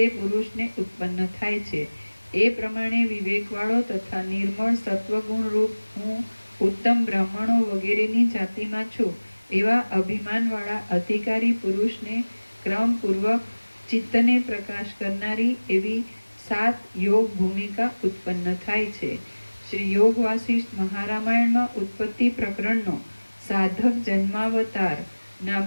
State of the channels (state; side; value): inverted; both; correlation -1.00